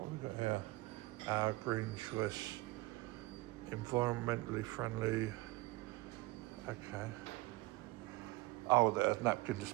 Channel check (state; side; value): quieter; left; 21.3 dB